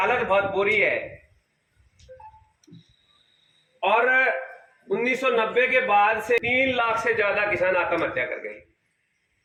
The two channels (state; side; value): identical; both; correlation 1.00